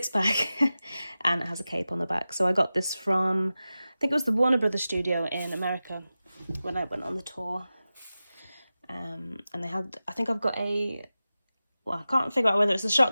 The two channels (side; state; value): both; inverted; correlation -0.95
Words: and it has a cape on the back. So I got this from, I think it was the Warner Brothers studio in America when I went on the tour. And they had, I think I've got a, well, I can't figure out whether it's a